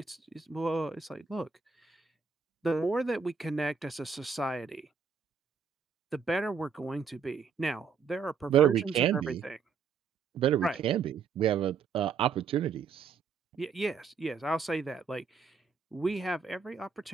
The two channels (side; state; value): left; quieter; 5.8 dB